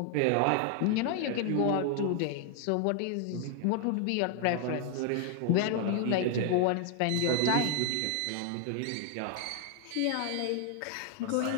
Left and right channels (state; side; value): different; both; correlation 0.00